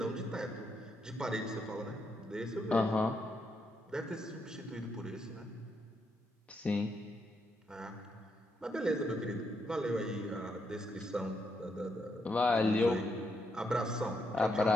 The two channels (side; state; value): both; normal; correlation 0.79